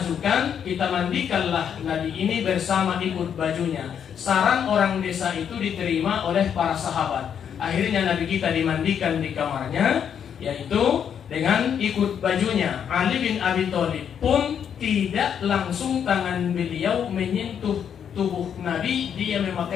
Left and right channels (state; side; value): quieter; right; 8.2 dB